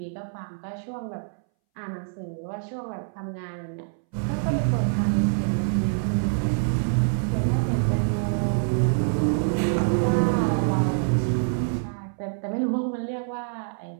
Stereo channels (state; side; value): silent; left; 61 dB below the other